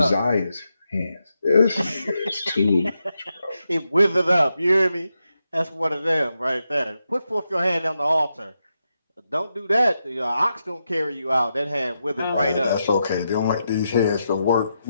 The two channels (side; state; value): both; inverted; correlation -0.86